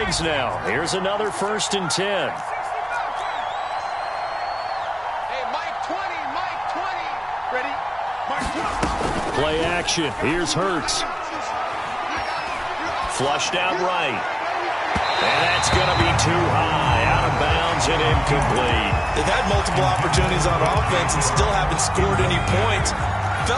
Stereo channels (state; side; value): identical; both; correlation 1.00